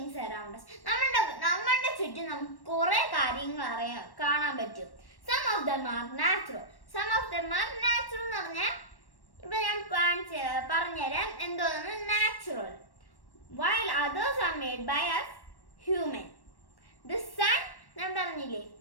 around us. നമ്മുടെ ചുറ്റും നമുക്ക് കുറെ കാര്യങ്ങൾ കാണാൻ പറ്റും. Some of them are natural. Some of them are natural എന്ന് പറഞ്ഞാൽ ഇപ്പൊ ഞാൻ പറഞ്ഞുതരാം എന്തോന്ന് natural. While others are made by us human. The sun ഞാൻ പറഞ്ഞില്ലേ,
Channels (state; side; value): late; right; 1.1 ms